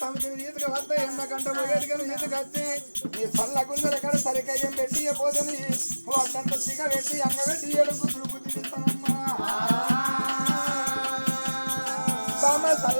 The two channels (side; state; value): both; inverted; correlation -1.00